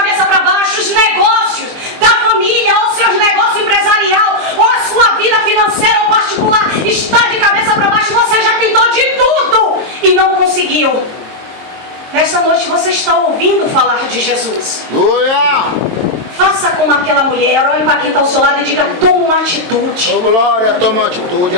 para baixo, os negócios da família, ou seus negócios empresarial, ou a sua vida financeira ou particular está de cabeça para baixo. Você já tentou de tudo e não conseguiu. Nesta noite você está ouvindo falar de Jesus. Glória! Faça como aquela mulher, olhe para quem está ao seu lado e diga: toma uma atitude. Oh, glória, toma uma atitude,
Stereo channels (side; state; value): left; late; 22 ms